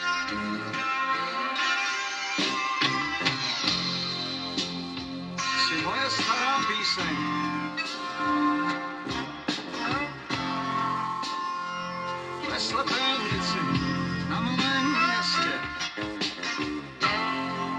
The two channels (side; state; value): both; identical; correlation 1.00